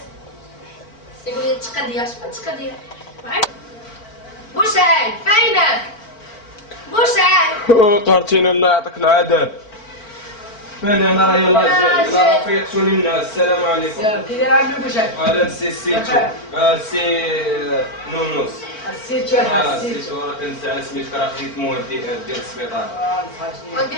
يقول لي تقضيه شحال تقضيه بوسعيد فينك بوسعيد قهرتينا الله يعطيك العذاب. فين انا راه يلاه جاي راه فيقتوني الناس. السلام عليكم. كي داير عندك بوشاك؟ هذا السيتو سي نونوس. السيتو الحاج السيتو. السيتو راه كنزعل سميتك راه خديت مواد ديال السبيطار.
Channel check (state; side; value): late; right; 4.5 ms